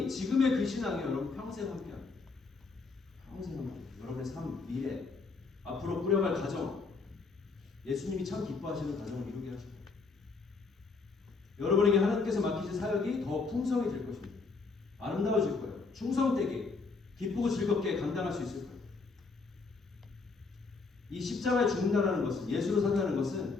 지금의 그 신앙이 여러분 평생 함께합니다. 평생 함께. 여러분의 삶, 미래, 앞으로 꾸려갈 가정, 예수님이 참 기뻐하시는 가정을 이루게 하시고 여러분에게 하나님께서 맡기신 사역이 더 풍성해질 것입니다. 아름다워질 거예요. 충성되게 기쁘고 즐겁게 감당할 수 있을까요? 이 십자가에 죽는다는 것은, 예수로 산다는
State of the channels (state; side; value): quieter; right; 4.3 dB